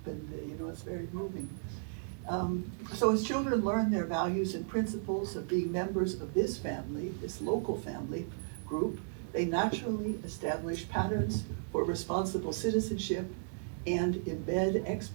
and it's very moving. So as children learn their values and principles of being members of this family, this local family group, they naturally establish patterns for responsible citizenship and embed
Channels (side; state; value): left; silent; digital silence